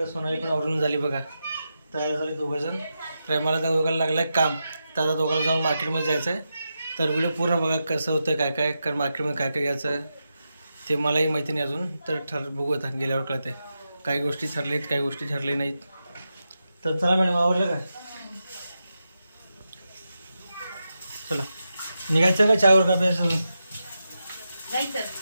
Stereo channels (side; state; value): both; inverted; correlation -0.88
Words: सोनाली पण आवरून झाली बघा, तयार झाले दोघंजण। तर मला दोघांना लागलं आहे काम, तर आता दोघांना जाऊन मार्केटमध्ये जायचं आहे। तर व्हिडिओ पूर्ण बघा कसं होतं, काय काय कर मार्केटमध्ये काय काय घ्यायचं ते मलाही माहिती नाही अजून, तर बघू आता गेल्यावर कळते। काही गोष्टी ठरलेत, काही गोष्टी ठरले नाहीत। तर चला मॅडम, आवडलं काय? चला निघायचं का चहावर का प्यायचं?